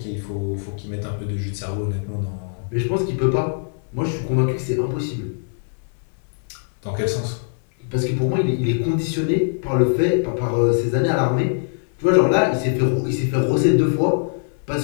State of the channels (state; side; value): silent; right; digital silence